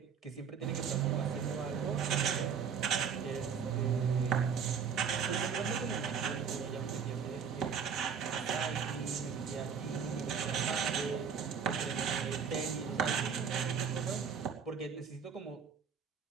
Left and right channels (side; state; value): left; quieter; 6.8 dB